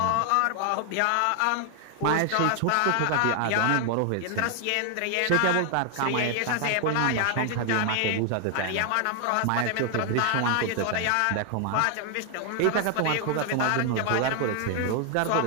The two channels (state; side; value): different; both; correlation 0.00